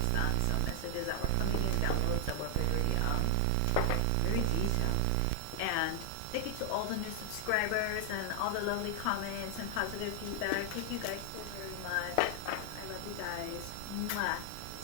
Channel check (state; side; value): different; both; correlation 0.00